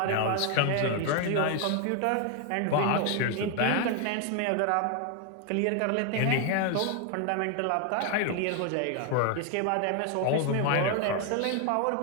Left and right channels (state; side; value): different; both; correlation 0.00